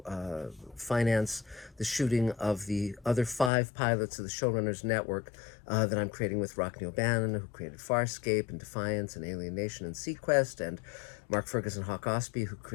finance the shooting of the other 5 pilots of the Showrunners Network that I'm creating with Rockne O'Bannon, who created Farscape and Defiance and Alien Nation and Sequest, and Mark Ferguson Hawk Ospey, who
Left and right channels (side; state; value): right; drops out; at 3.5 s